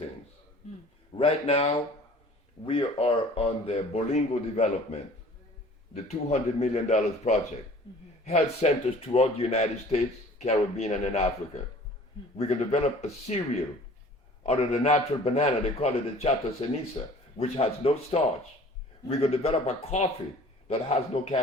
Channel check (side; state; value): both; normal; correlation 0.48